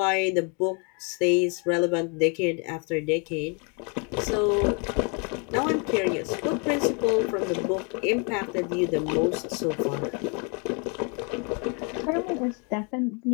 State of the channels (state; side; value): quieter; right; 35.0 dB